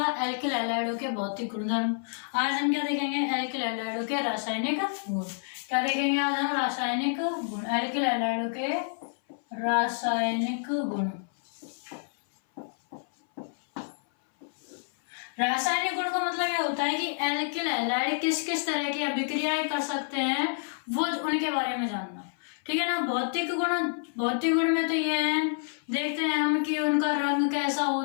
एल्किल हैलाइडों के भौतिक गुणधर्म। आज हम क्या देखेंगे? एल्किल हैलाइडों के रासायनिक गुण। क्या देखेंगे आज हम? रासायनिक गुण। एल्किल हैलाइडों के रासायनिक गुण। रासायनिक गुण का मतलब यह होता है कि एल्किल हैलाइड किस किस तरह की अभिक्रियाएं कर सकते हैं, वो उनके बारे में जानना। ठीक है ना। भौतिक गुण में तो ये है, देखते हैं हम कि उनका रंग कैसा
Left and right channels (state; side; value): silent; right; 58 dB below the other